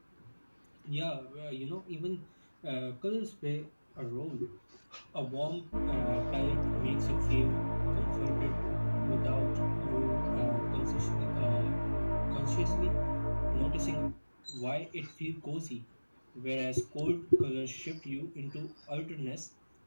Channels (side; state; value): both; inverted; correlation -1.00